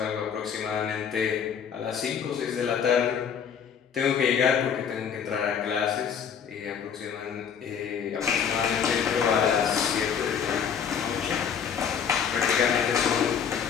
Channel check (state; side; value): quieter; right; 7.5 dB